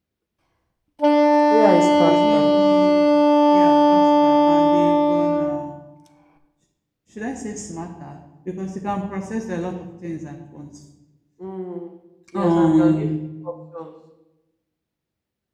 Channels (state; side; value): identical; both; correlation 1.00